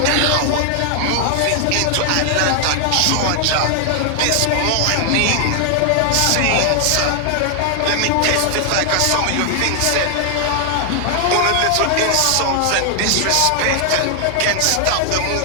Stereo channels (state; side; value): different; both; correlation 0.00